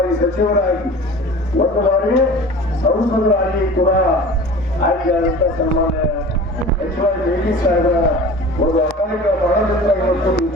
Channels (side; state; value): both; normal; correlation 0.40